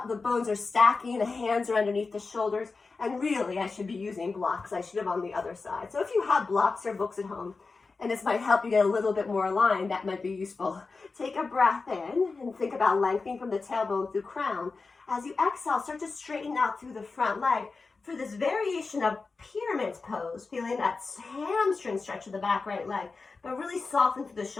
The bones are stacking, the hands are underneath the shoulders. And really, I should be using blocks. I should have on the other side. So if you have blocks or books at home, and this might help you get a little bit more aligned, that might be useful. Take a breath in and think about lengthening from the tailbone through crown. As you exhale, start to straighten out through the front leg for this variation of pyramid pose, feeling that hamstring stretch of the back right leg, but really soften through the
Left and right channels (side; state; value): right; quieter; 4.2 dB